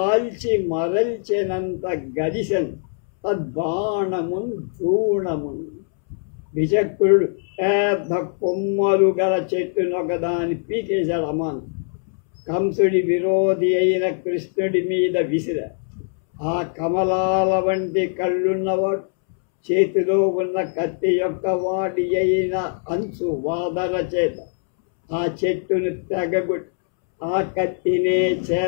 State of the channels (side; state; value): right; silent; 64 dB below the other